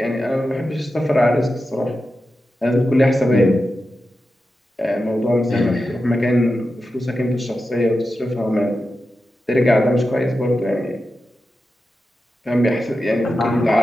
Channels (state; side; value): normal; both; correlation 0.91